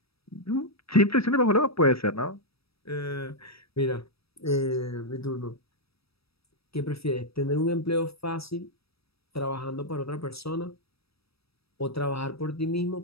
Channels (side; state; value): right; late; 0.77 ms